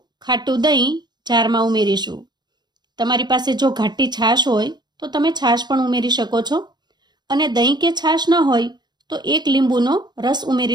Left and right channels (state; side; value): late; left; 0.21 ms